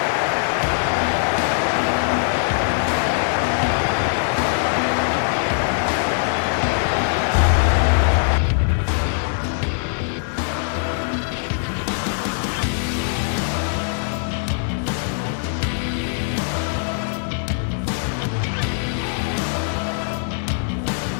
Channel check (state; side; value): silent; right; 65 dB below the other